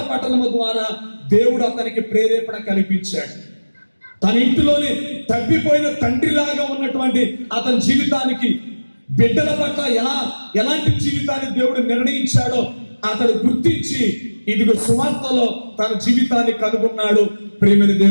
పఠనము ద్వారా దేవుడు అతనికి ప్రేరేపణ కల్పించాడు. తన ఇంటిలోనే తప్పిపోయిన తండ్రిలాగా ఉన్నటువంటి అతని జీవితానికి, బిడ్డల పట్ల ఎలాంటి జీవితాన్ని దేవుడు నిర్ణయించాడో అతడు గుర్తించి ఇదిగో సువార్తలో తన జీవితాన్ని కనుగొన్నాడు. ప్రేమని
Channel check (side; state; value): both; inverted; correlation -1.00